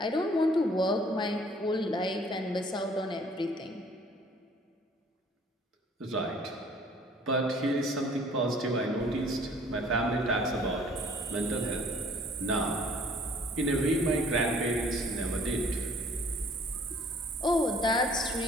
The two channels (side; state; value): both; normal; correlation 0.56